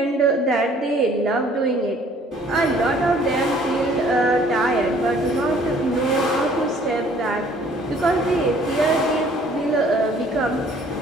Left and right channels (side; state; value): both; normal; correlation 0.57